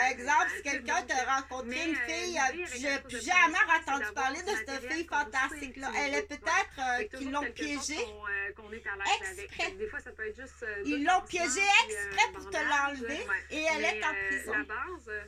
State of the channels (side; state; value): both; identical; correlation 1.00